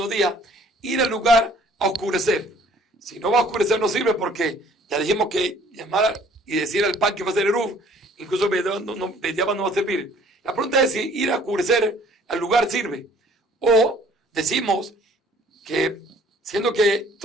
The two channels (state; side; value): normal; both; correlation 0.56